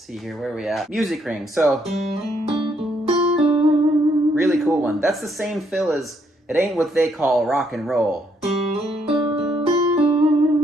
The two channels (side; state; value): both; normal; correlation 0.72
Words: here, where are we at? Music ring. So, really cool one. That's the same fill as It Ain't What They Call Rock and Roll.